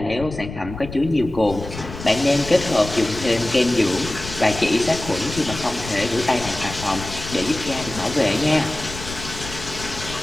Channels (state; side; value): noise; left; rumble, 11 dB below the sound